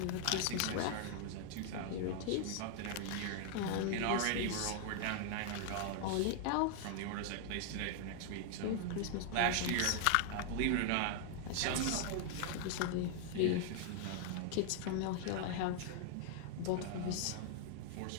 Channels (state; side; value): different; both; correlation 0.00